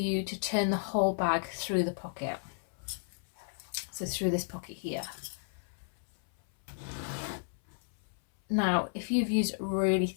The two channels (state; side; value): silent; right; 56 dB below the other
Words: to turn the whole bag through the pocket. So through this pocket here. Now, if you've used really